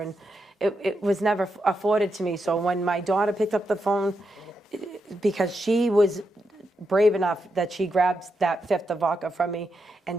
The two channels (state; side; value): normal; both; correlation 0.84